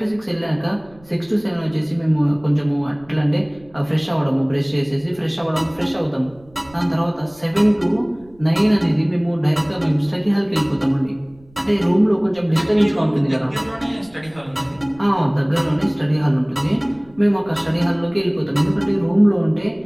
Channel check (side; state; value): right; noise; rumble, 27 dB below the sound